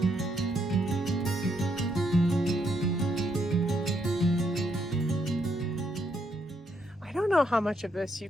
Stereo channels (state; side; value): normal; both; correlation 0.75